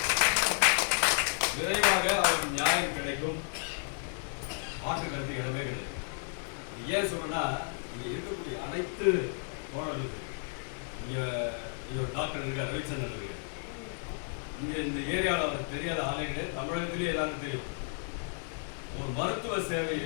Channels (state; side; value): silent; right; 56 dB below the other